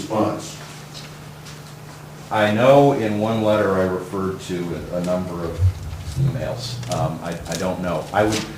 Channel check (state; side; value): identical; both; correlation 1.00